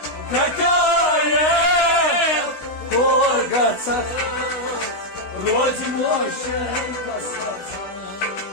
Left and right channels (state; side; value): late; right; 16 ms